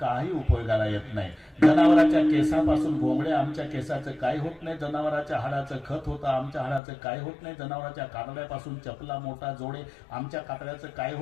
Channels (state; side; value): drops out; right; at 6.8 s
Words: उपयोगाला येत नाही. जनावराच्या केसापासून घोंगडे, आमच्या केसाचं काही होत नाही. जनावराच्या हाडाचं खत होतं, आमच्या हाडाचं काही होत नाही. जनावराच्या कातड्यापासून चपला मोठा जोडे, आमच्या कातड्याचं काही